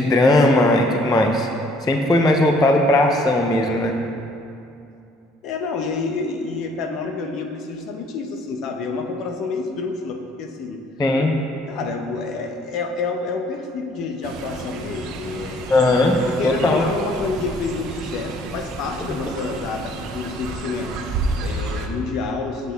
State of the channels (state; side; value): normal; both; correlation 0.61